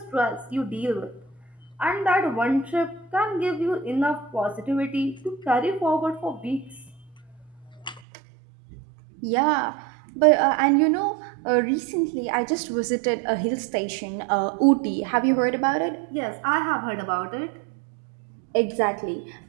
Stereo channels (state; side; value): drops out; left; at 8.0 s